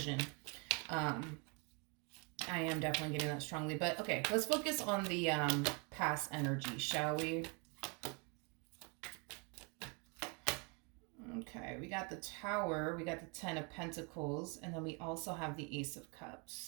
I am definitely getting that strongly. But okay, let's focus on the past energy, shall we? Okay, we got the Tower, we got the Ten of Pentacles, and then we also have the Ace of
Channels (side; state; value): left; quieter; 33.5 dB